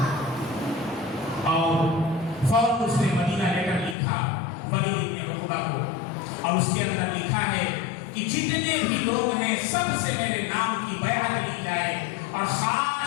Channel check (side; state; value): right; drops out; at 4.0 s